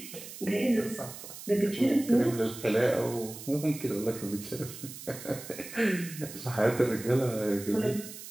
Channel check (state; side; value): noise; right; hiss, 13 dB below the sound